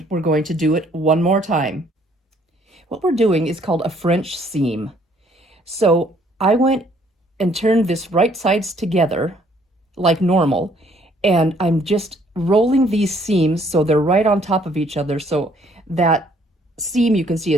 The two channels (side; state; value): both; normal; correlation 0.63